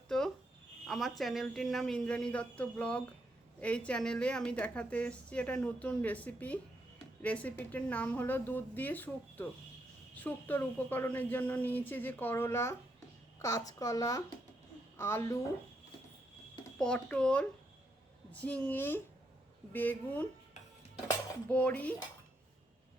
আমার চ্যানেলটির নাম ইন্দ্রাণী দত্ত ব্লগ। এই চ্যানেলে আমি দেখাতে এসেছি একটা নতুন রেসিপিটির নাম হলো দুধ দিয়ে শুক্তো। শুক্তোর উপকরণের জন্য নিয়েছি যে করলা, কাঁচকলা, আলু, পটল, ঝিঙে, বেগুন, বড়ি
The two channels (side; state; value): both; normal; correlation 0.79